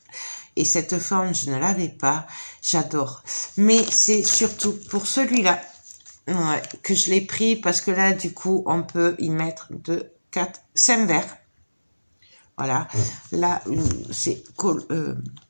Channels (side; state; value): both; inverted; correlation -1.00